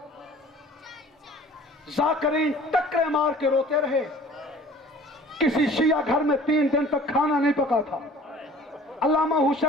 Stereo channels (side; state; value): both; normal; correlation 0.48